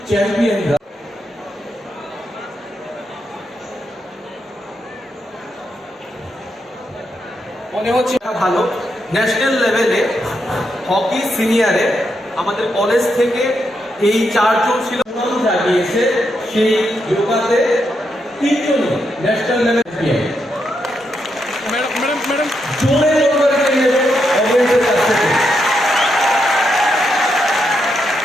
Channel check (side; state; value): both; normal; correlation 0.82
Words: চ্যাম্পিয়নরা। মনে হচ্ছে ভালো। ন্যাশনাল লেভেলে হকি সিনিয়রে আমাদের কলেজ থেকে এই 4 জন ছিল। নাম জাগিয়েছে সেই যোগাতে 3 জন ন্যাশনাল লেভেল চ্যাম্পিয়ন। ম্যাডাম জোরে করে নিয়ে অবশ্যই কাছ থেকে